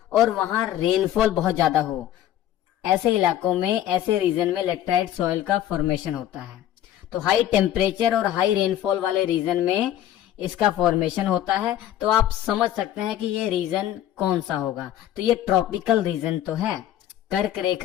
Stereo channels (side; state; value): right; quieter; 12.1 dB